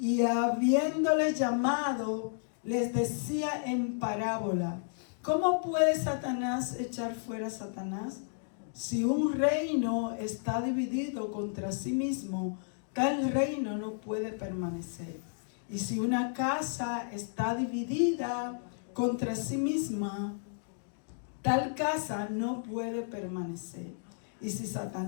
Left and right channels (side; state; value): right; silent; digital silence